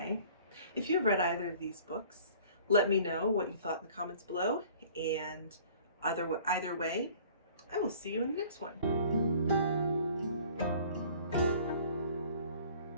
if you've read either of these books, let me know what you thought in the comments below. And either way, I will see you in the next one.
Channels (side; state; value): both; inverted; correlation -0.51